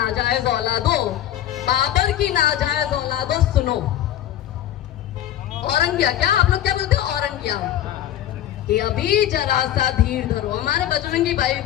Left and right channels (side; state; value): right; quieter; 12.1 dB